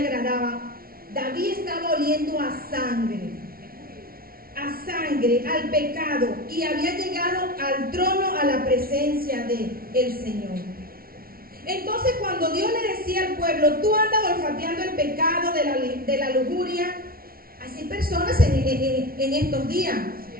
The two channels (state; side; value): late; left; 0.43 ms